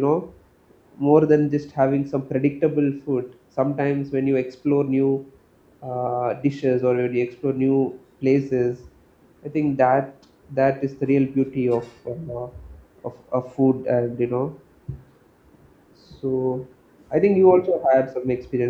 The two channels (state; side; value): identical; both; correlation 1.00